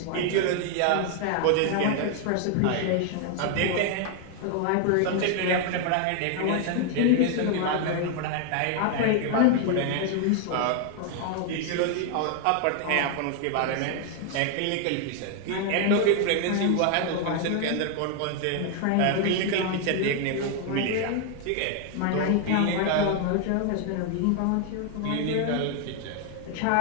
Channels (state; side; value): different; both; correlation 0.00